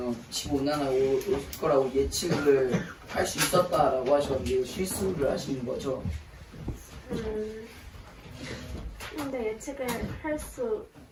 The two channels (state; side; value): identical; both; correlation 1.00